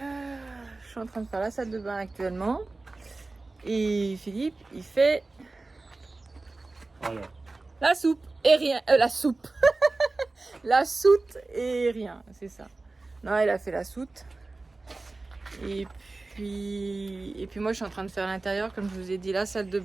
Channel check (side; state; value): left; quieter; 3.3 dB